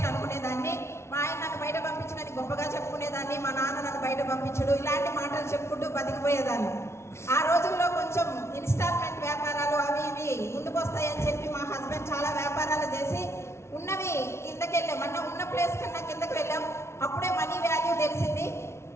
అనుకునేదాన్ని. మా ఆయన నన్ను బయట పంపించడానికి గొప్పగా చెప్పుకునేదాన్ని, మా నాన్న నన్ను బయట పంపించడు, ఇలాంటి మాటలు చెప్పుకుంటూ బతికిపోయేదాన్ని. ఆ రోజుల్లో కొంచెం ఇన్స్టాల్మెంట్ వ్యాపారాలు అవి ఇవి ముందుకు వస్తాయని చెప్పి మా హస్బెండ్ చాలా వ్యాపారాలు చేసి ఉన్నవి కిందకి వెళ్ళాం. ఉన్న ప్లేస్ కన్నా కిందకి వెళ్ళాం. అప్పుడే మనీ వాల్యూ తెలిసింది.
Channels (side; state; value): right; late; 0.13 ms